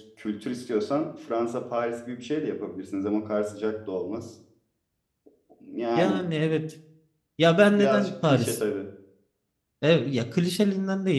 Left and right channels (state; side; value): identical; both; correlation 1.00